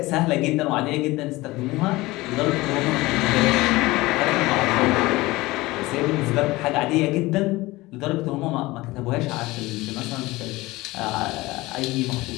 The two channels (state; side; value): quieter; right; 20.2 dB